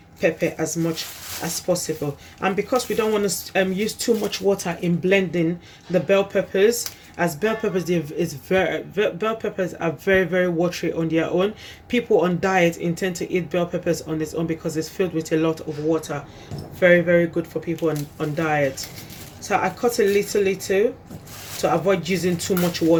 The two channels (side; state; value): both; identical; correlation 1.00